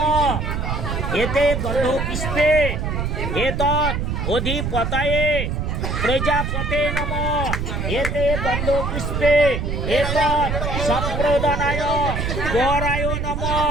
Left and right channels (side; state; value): right; noise; rumble, 2 dB below the sound